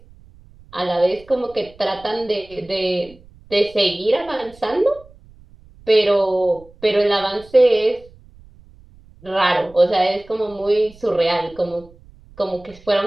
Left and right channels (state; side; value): noise; right; rumble, 25 dB below the sound